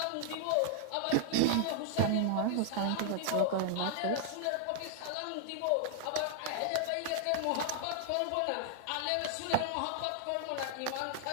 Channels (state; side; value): different; both; correlation 0.00